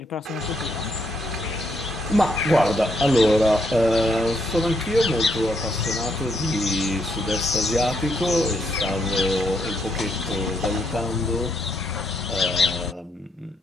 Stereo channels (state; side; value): normal; both; correlation 0.76